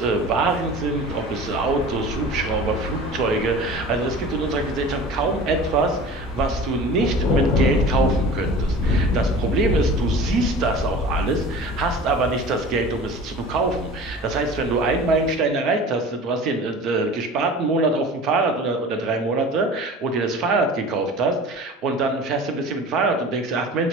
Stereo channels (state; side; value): normal; both; correlation 0.39